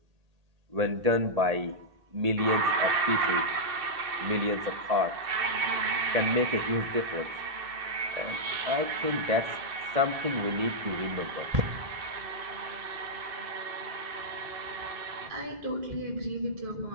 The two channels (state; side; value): late; left; 1.8 ms